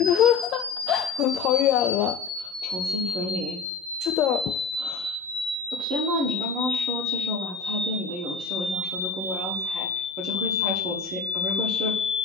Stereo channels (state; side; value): quieter; right; 5.2 dB